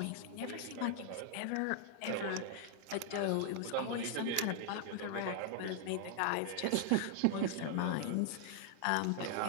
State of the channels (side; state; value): both; different; correlation 0.00